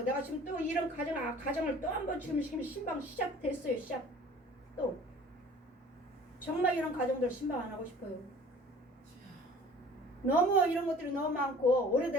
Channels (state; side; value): normal; both; correlation 0.48